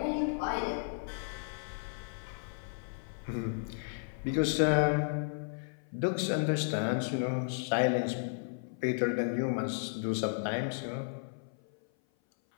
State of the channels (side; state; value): right; silent; 55 dB below the other